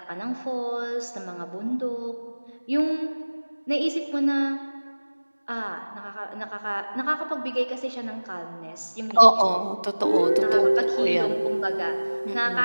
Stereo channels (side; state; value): both; inverted; correlation -1.00